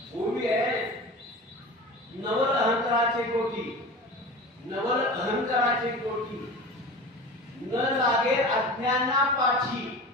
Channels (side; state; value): both; normal; correlation 0.34